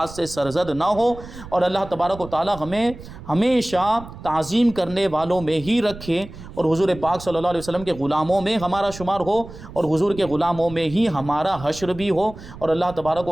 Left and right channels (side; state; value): right; noise; rumble, 15 dB below the sound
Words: سے سرزد نہ ہو، اور اللہ تبارک و تعالی ہمیں ہمیشہ تعظیم کرنے والوں میں ہی رکھے، اور حضور پاک صلی اللہ علیہ وسلم کے غلاموں میں ہمارا شمار ہو، اور حضور کے غلاموں میں ہی ہمارا حشر بھی ہو، اور اللہ تبارک